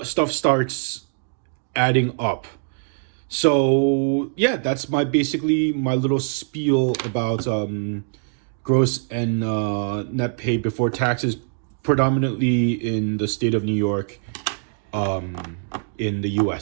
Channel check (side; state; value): left; silent; digital silence